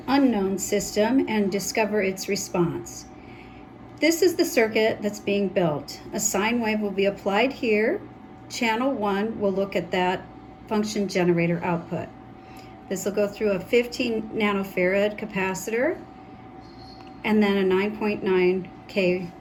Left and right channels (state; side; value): identical; both; correlation 1.00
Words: unknown system and discover its response. This is the circuit that's being built. A sine wave will be applied here. Channel 1 will look at that function generator output. This will go through a 15 nanofarad capacitor and then a 9.9K